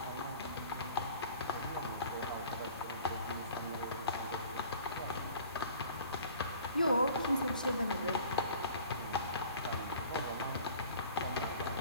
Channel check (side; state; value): both; inverted; correlation -0.47